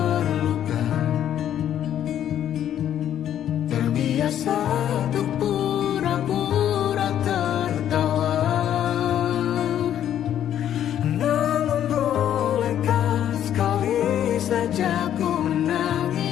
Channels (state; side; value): quieter; right; 10.6 dB